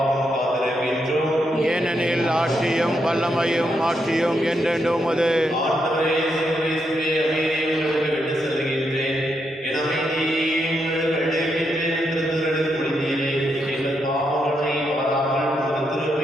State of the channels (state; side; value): normal; both; correlation 0.81